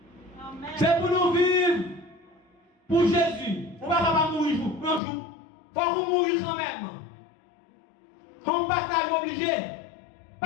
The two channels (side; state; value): right; drops out; at 5.0 s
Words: C'est pour nous vivre pour Jésus. On ne va pas mourir un jour. Il faut qu'on mourir quand même. On passage obligé.